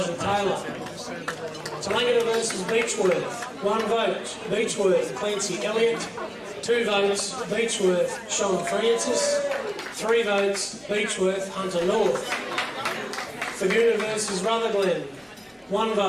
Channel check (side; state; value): both; identical; correlation 1.00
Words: Taylor. Tallangatta versus Beechworth. 1 vote, Beechworth, Clancy Elliott. 2 votes, Beechworth, Sean Francis. 3 votes, Beechworth, Hunter North. Thaguna versus Rutherglen. 1